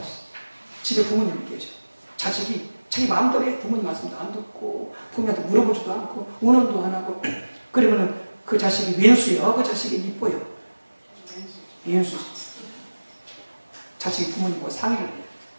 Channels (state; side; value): inverted; both; correlation -1.00